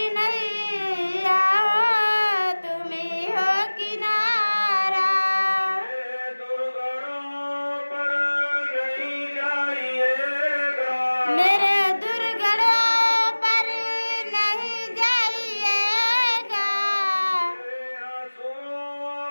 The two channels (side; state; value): both; inverted; correlation -1.00